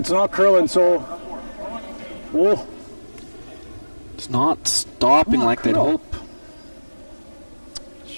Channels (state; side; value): inverted; both; correlation -1.00